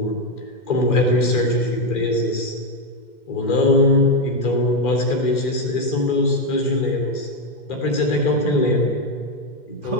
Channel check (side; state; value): right; late; 2.1 ms